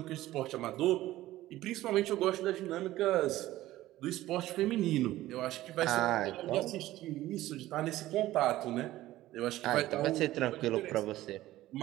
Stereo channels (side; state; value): left; quieter; 15.6 dB